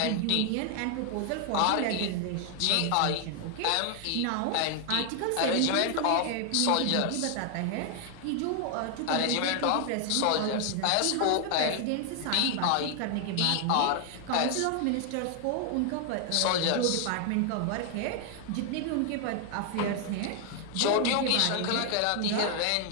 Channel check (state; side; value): different; both; correlation 0.00